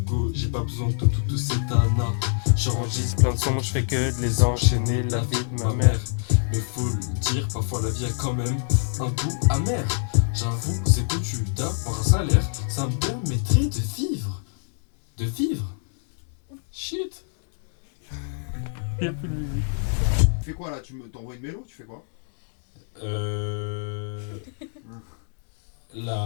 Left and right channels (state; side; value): silent; right; digital silence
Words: j'ai pas besoin de toute cette anna. Je J'enregistre plein de sons, je fais que de les enchaîner, la vie de ma mère. Mais faut le dire, parfois la vie a quand même un goût amer. J'avoue, c'est que tu d'avoir un salaire, ça me permettrait de vivre. De vivre. Shit. Il y a plus de musique. Tu fais quoi là? T'envoies une mélo? Tu fais quoi?